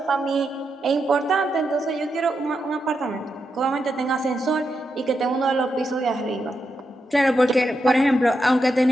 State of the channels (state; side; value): normal; both; correlation 0.85